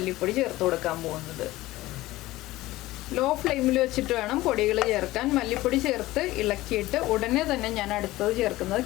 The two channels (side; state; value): right; quieter; 17.7 dB